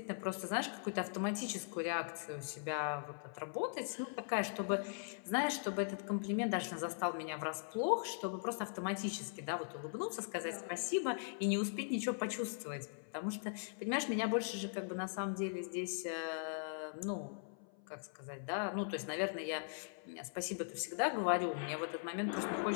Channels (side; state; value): right; silent; 51 dB below the other